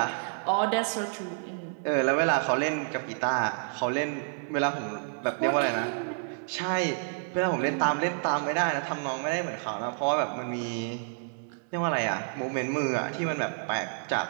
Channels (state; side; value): silent; left; digital silence